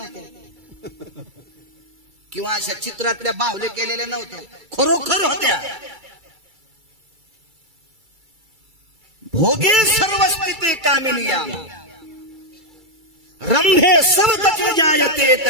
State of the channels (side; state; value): left; late; 2.3 ms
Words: किंवा अशा चित्रातल्या बाहुले केलेल्या नव्हत्या, खरोखर होत्या. भोगे सर्व स्थिती कामिनिया रंभे सर्वतच जायते